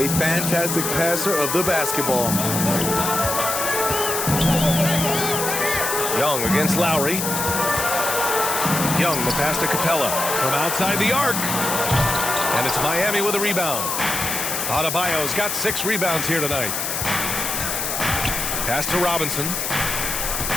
fantastic passer of the basketball. Young against Lowry. Young, the pass to Capella from outside the arc. And it's Miami with a rebound. Adebayo's got 6 rebounds here tonight. Pass to Robinson.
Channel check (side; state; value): left; noise; hiss, 2 dB below the sound